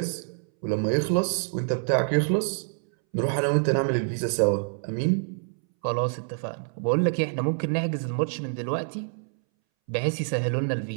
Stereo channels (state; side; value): silent; left; 60 dB below the other